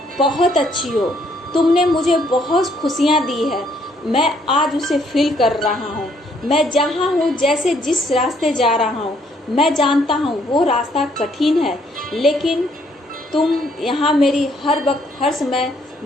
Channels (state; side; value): normal; both; correlation 0.68